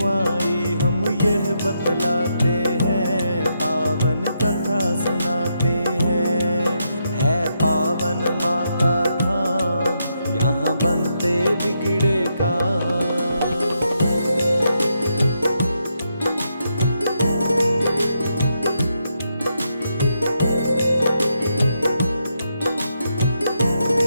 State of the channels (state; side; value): inverted; both; correlation -0.81